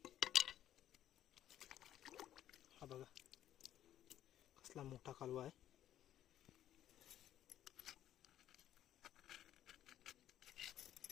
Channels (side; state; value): right; quieter; 11.7 dB